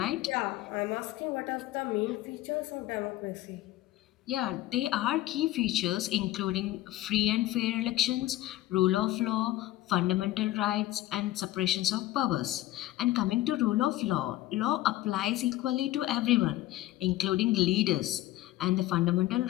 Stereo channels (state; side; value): quieter; right; 15.7 dB